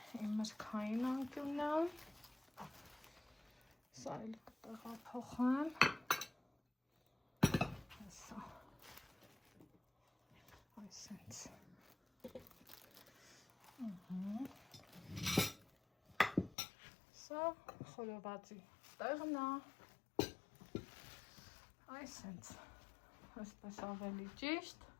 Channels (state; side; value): drops out; right; at 16.6 s